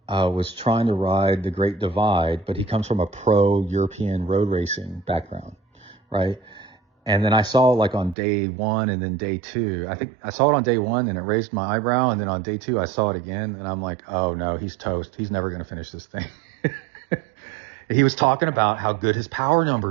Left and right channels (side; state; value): left; drops out; at 8.2 s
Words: was trying to ride the Great Divide, but he comes from a pro European road racing background, right? And then I saw like on day one and then day two, I think I saw it on day one and it raised my eyebrow. And then on day two, I saw it again and I'm like, oh no, he's toast. He's never going to finish this thing. He was talking about how good his power